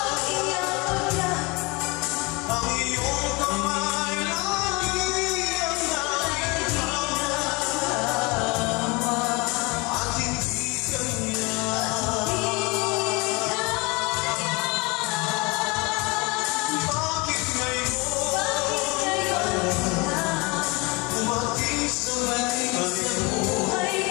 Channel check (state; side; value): quieter; right; 26.7 dB